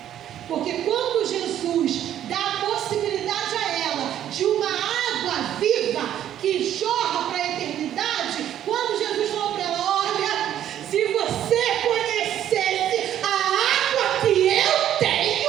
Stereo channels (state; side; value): quieter; left; 11.0 dB